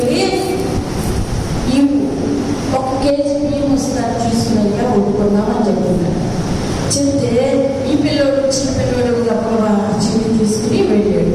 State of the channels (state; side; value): identical; both; correlation 1.00